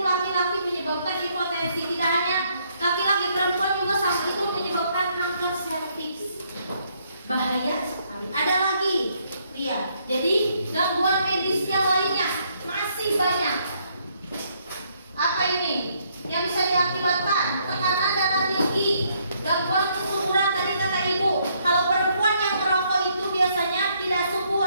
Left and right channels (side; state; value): both; inverted; correlation -0.71